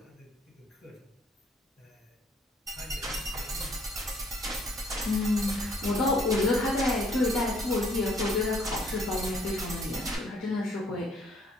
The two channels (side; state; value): both; normal; correlation 0.63